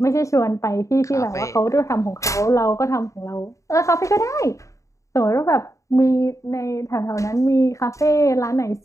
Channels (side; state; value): right; late; 0.15 ms